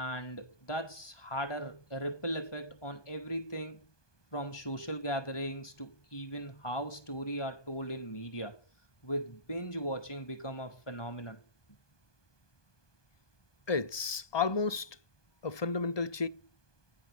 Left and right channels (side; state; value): right; late; 1.2 ms